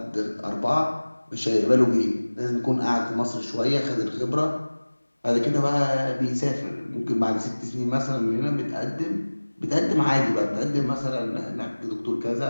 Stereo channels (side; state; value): both; inverted; correlation -1.00